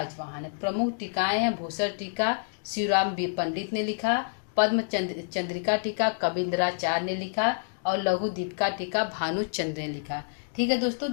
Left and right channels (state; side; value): silent; right; digital silence